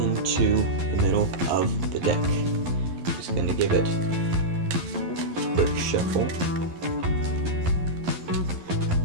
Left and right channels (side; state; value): left; late; 11 ms